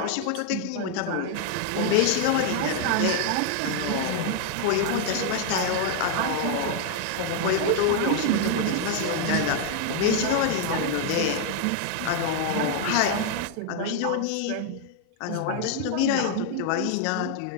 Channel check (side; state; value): both; different; correlation 0.00